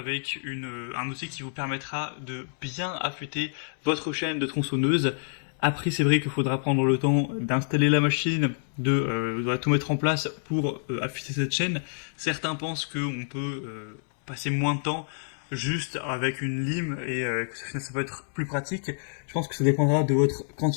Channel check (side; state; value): right; silent; 60 dB below the other